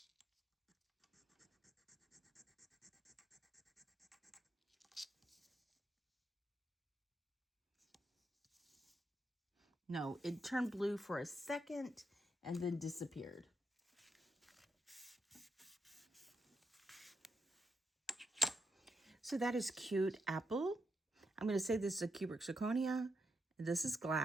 No, it turned blue for a second and then disappeared. So that is cute apple. I'm going to say this is a cubic zirconia. This is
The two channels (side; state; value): both; normal; correlation 0.83